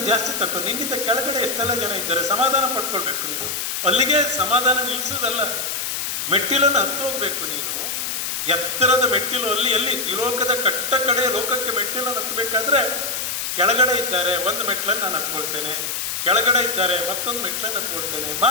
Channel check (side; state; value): left; noise; hiss, 2 dB below the sound